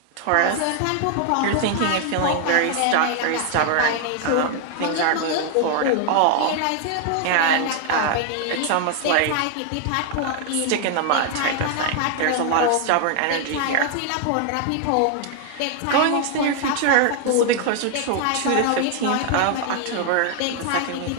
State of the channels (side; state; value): both; different; correlation 0.00